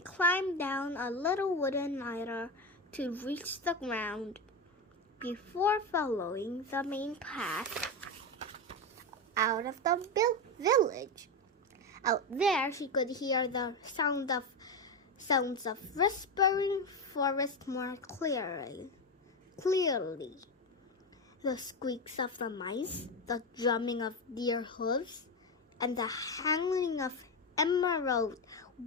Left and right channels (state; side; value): normal; both; correlation 0.15